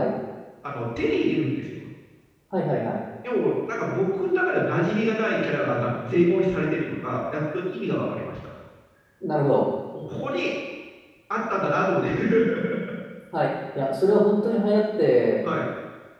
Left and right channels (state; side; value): identical; both; correlation 1.00